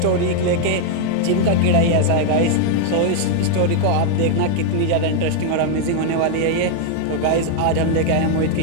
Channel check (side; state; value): both; different; correlation 0.00